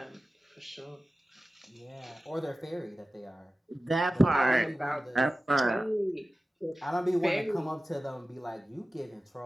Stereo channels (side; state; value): both; normal; correlation 0.95